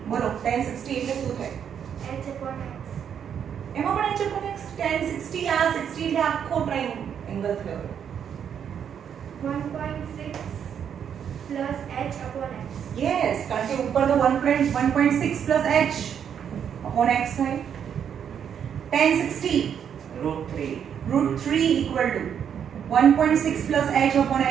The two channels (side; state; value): left; quieter; 8.3 dB